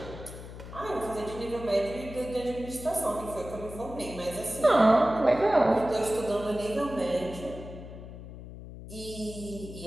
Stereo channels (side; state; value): left; noise; hum, 13 dB below the sound